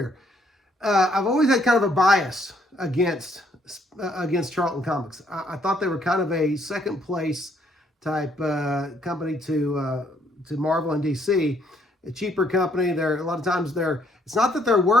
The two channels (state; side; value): normal; both; correlation 0.69